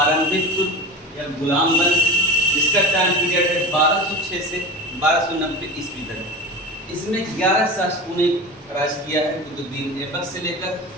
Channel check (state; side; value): normal; both; correlation 0.30